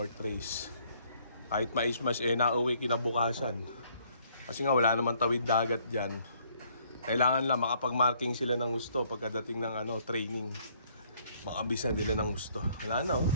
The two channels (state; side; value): inverted; both; correlation -0.64